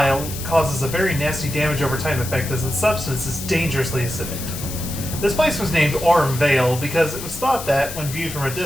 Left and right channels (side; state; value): left; noise; hiss, 9 dB below the sound